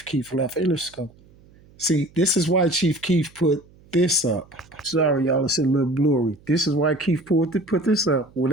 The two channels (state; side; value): noise; right; hum, 27 dB below the sound